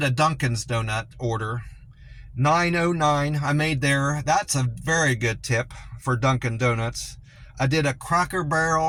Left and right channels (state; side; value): identical; both; correlation 1.00